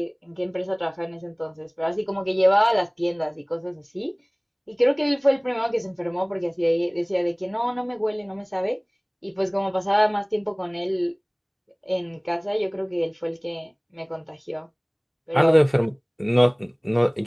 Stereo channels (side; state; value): both; identical; correlation 1.00